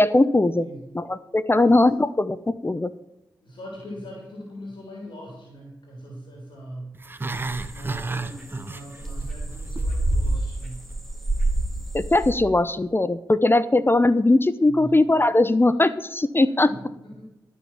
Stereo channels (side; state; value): both; normal; correlation 0.89